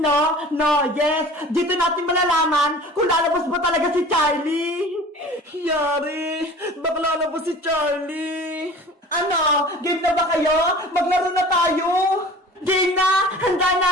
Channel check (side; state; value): both; normal; correlation 0.43